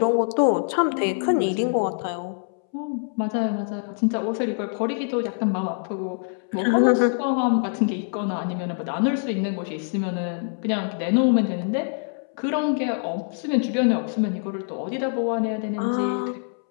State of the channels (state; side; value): silent; right; 62 dB below the other